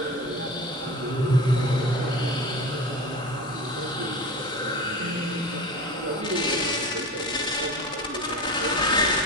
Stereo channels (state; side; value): normal; both; correlation 0.31